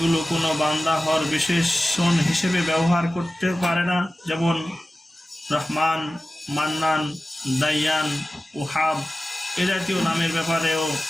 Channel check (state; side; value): normal; both; correlation 0.95